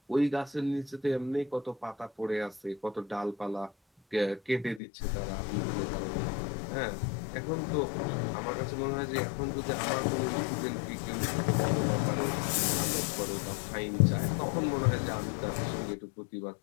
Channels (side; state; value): right; drops out; at 4.8 s